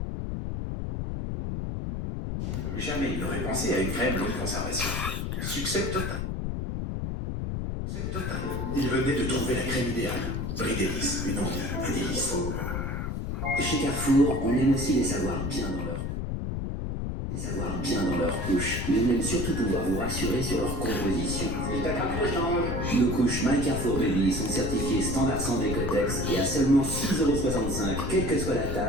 Jamais il n'aurait pensé à une crème longue conservation. Succès total. Il venait de trouver la crème idéale. Brie Davis, une envie, un délice. Chez Carrefour, on aime aussi les avoir bien dans leur couche, mais on aime surtout pouvoir vous rassurer sur leur composition. Nos couches My Carrefour Baby sont certifiées standard sans décotex et à seulement 6,65 €, quelle que soit la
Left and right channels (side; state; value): left; noise; rumble, 2 dB below the sound